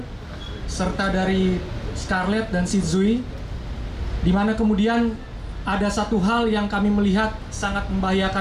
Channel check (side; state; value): both; identical; correlation 1.00